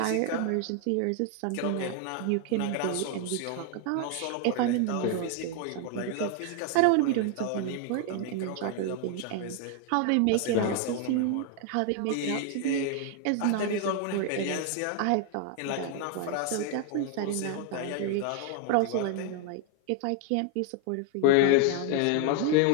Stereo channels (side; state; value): both; different; correlation 0.00